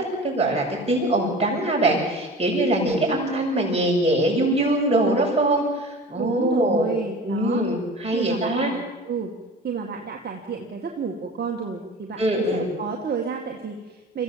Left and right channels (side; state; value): both; normal; correlation 0.38